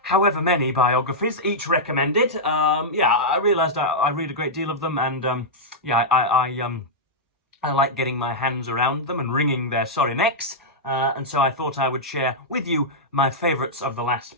however many biographies, each recommended. I realised I read a great deal of them, and I like getting my hands around them and wringing their sorry necks. And so I thought I would share with you my favourites of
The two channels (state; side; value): normal; both; correlation -0.08